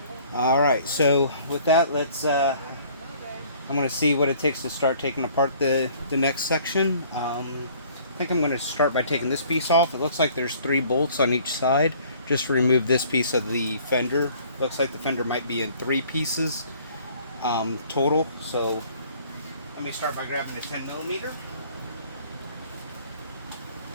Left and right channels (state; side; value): inverted; both; correlation -0.55